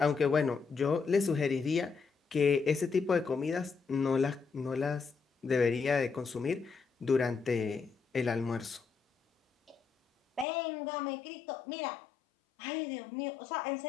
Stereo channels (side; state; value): right; drops out; at 10.5 s